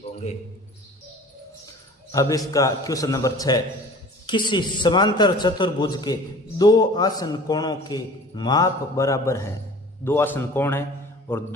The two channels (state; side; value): normal; both; correlation 0.44